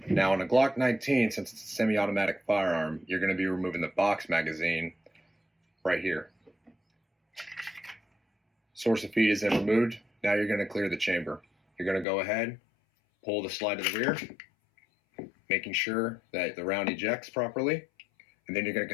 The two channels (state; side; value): drops out; right; at 12.1 s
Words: Now on a Glock 19, since it's a semi-automatic firearm, you're going to be removing the box magazine right here. Source of feed is then removed. Now you're going to clear the chamber. You're going to go ahead, pull the slide to the rear, making sure that the round ejects properly, and then you're going to